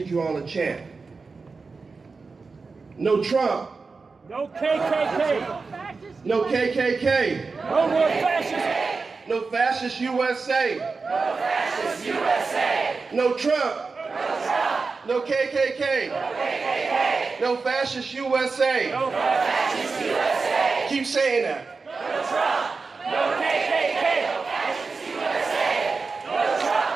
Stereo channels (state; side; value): quieter; left; 4.4 dB